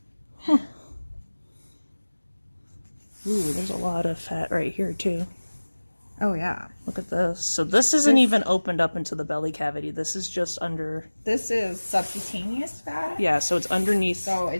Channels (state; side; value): inverted; both; correlation -1.00